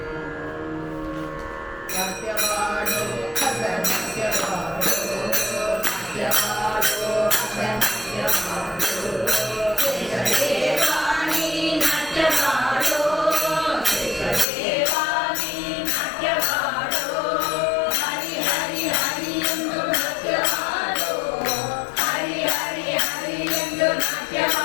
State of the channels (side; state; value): right; drops out; at 14.5 s